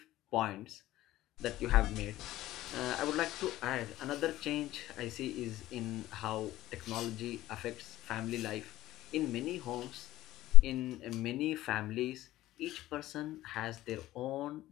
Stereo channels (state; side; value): quieter; right; 15.5 dB